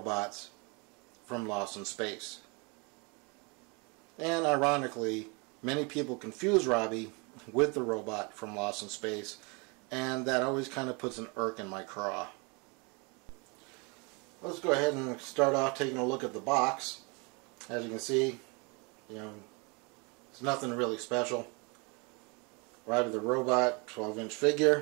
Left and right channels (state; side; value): quieter; left; 31.0 dB